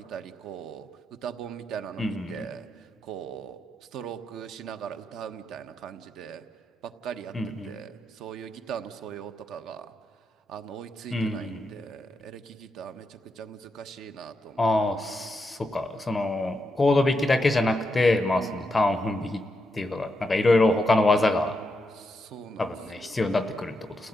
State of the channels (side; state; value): both; normal; correlation 0.84